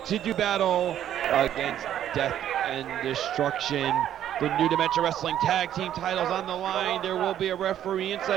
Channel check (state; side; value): quieter; left; 10.9 dB